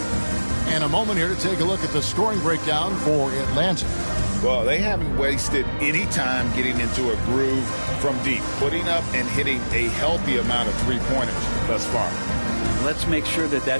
And a moment here to take a look at the scoring breakdown for Atlanta. Well, they haven't wasted any time getting into a groove from deep, putting up and hitting a healthy amount of three-pointers thus far. Let's make sure that that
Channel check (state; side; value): inverted; both; correlation -1.00